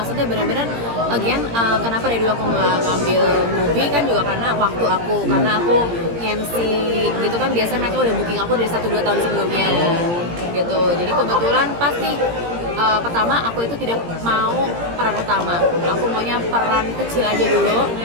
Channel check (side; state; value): left; late; 17 ms